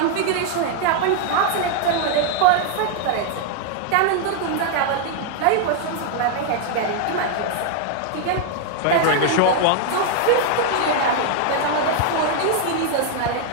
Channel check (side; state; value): both; different; correlation 0.00